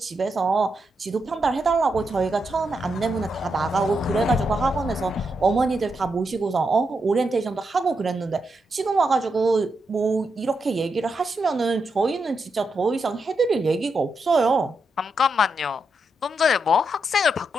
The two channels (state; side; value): normal; both; correlation 0.83